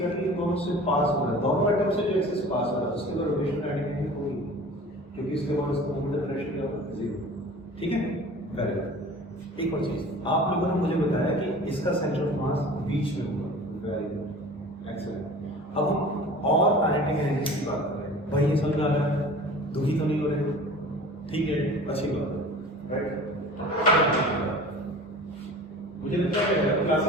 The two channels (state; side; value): normal; both; correlation 0.41